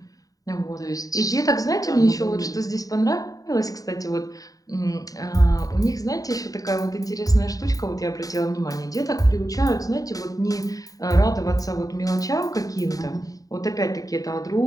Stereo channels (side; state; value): right; late; 0.17 ms